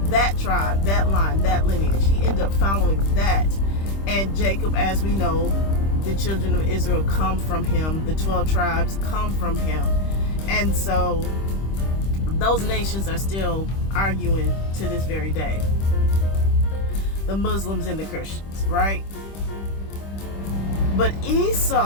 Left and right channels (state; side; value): late; right; 25 ms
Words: that tribe, that line, that lineage, he ended up following that. And Jacob, as we know, the children of Israel come from him. The 12 tribes come from him. And so those nations are still arguing to this very day. The Muslims and the Christians, right? But